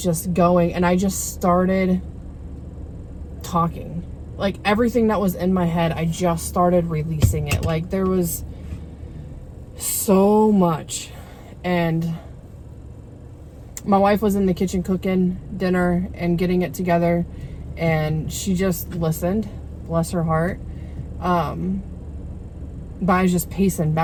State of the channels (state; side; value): identical; both; correlation 1.00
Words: just going, and I just started talking. Like everything that was in my head, I just started releasing it. Like there was so much. And my wife was in the kitchen cooking dinner and getting it together, and she just listened, bless her heart. But I was just pacing